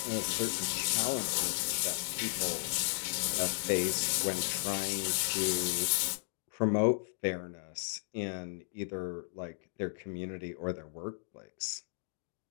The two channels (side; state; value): right; silent; digital silence